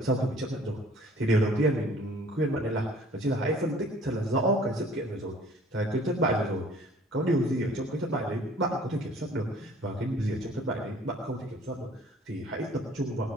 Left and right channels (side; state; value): both; normal; correlation 0.53